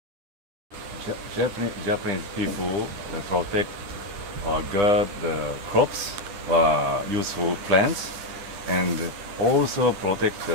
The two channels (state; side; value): late; left; 10 ms